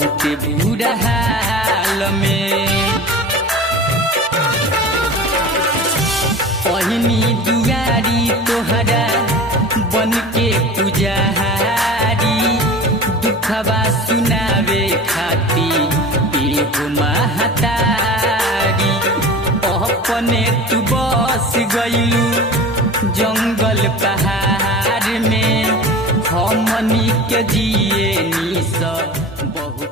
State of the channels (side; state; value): both; normal; correlation 0.36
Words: बुरा हाल में। ओहिनी दुआरी तोहरा बन के पुजारी। दुखवा सुनावे खाती एगो महतारी। अपने तू बस गइलू जंगल पहाड़ में। हमनी के जिए निस